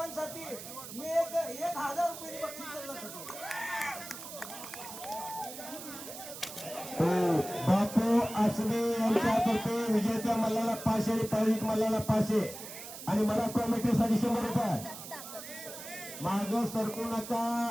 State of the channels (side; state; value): right; noise; hiss, 11 dB below the sound